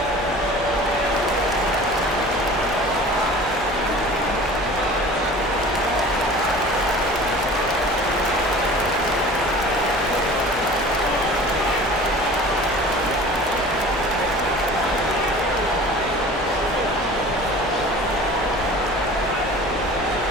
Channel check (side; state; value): left; noise; hum, 16 dB below the sound